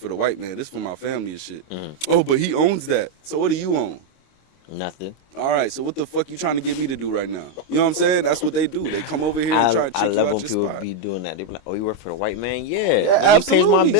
the white man? This for my family and shit. Oh, but he owns that. So what do you own? Nothing. All right, so what the fuck you trying to get me to do right now? You know what I'm saying? That's what they do. They come over here and try to trick you out your spot. I love when people be doing that. They be like, oh, you work for the white man? Yeah, absolutely. He pays my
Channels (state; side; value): late; right; 25 ms